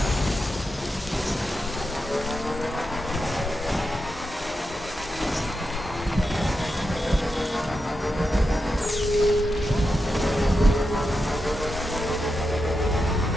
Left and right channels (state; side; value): normal; both; correlation 0.88